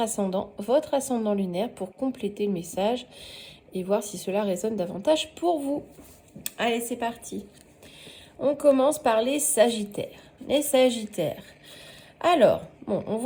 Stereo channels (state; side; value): identical; both; correlation 1.00